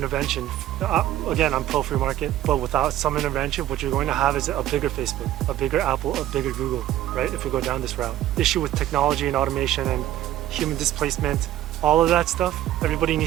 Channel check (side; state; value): left; quieter; 13.1 dB